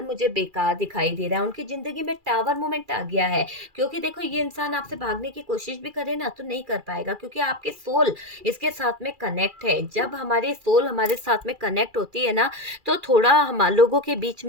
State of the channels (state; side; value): late; left; 2.4 ms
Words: मुझे बेकार दिखाई दे रहा है। उनकी ज़िंदगी में टावर मोमेंट आ गया है। क्योंकि देखो, ये इंसान आपसे भागने की कोशिश भी करे ना तो नहीं कर पाएगा, क्योंकि आपके सोल इसके साथ में कनेक्ट है। जब हमारी सोल हमारे साथ में कनेक्ट होती है ना, तो थोड़ा हम लोगों के बीच